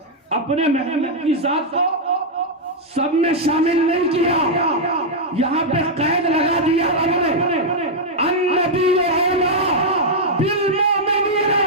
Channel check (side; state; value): both; normal; correlation -0.03